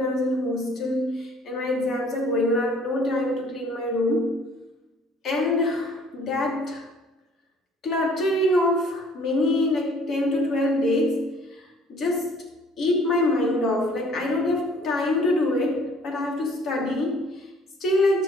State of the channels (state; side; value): normal; both; correlation 0.56